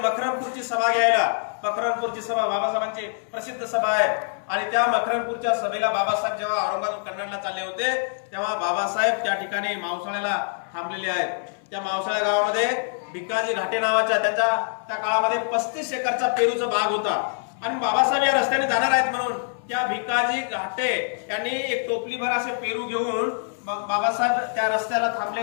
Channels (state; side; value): silent; right; 62 dB below the other